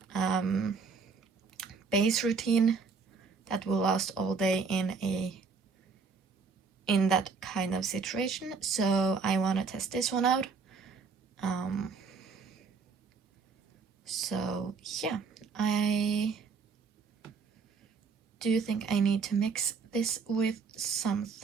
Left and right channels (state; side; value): quieter; left; 5.0 dB